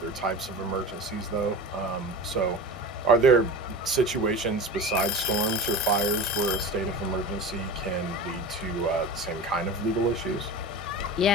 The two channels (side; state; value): both; normal; correlation 0.31